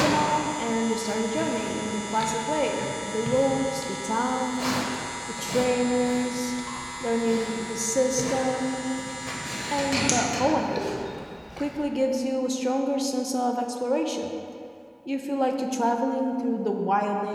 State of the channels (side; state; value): both; identical; correlation 1.00